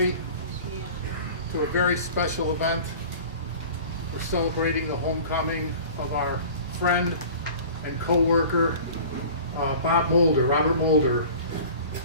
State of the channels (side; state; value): both; inverted; correlation -0.41